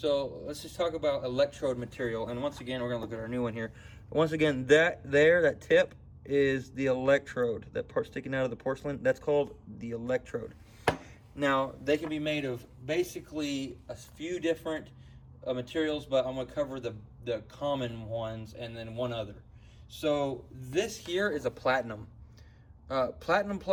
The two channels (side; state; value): both; identical; correlation 1.00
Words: let's just talk about Electrode Material. And once again, we're going to look at our new one here. Once again, that tip is the electrode. That part sticking out of the porcelain, that's called the electrode. Now, they can be made of basically a few different materials, but I'm going to cover the common ones and then one other. So this here is a platinum. Platinum